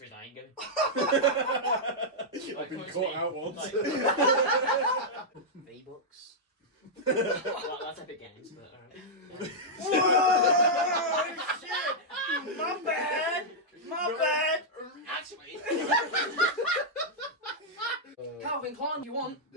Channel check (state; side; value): normal; both; correlation -0.07